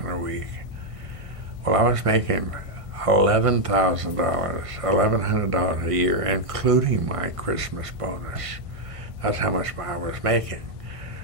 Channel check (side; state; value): left; late; 1.5 ms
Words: a week. Well, I was making $11,100 a year, including my Christmas bonus. That's how much I was making.